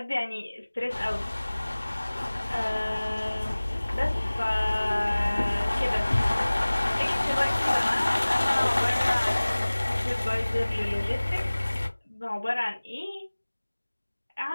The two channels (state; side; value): inverted; both; correlation -1.00